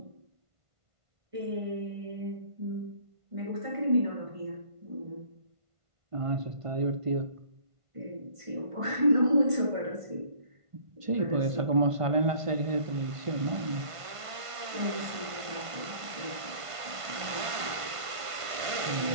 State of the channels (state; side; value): late; left; 1.5 ms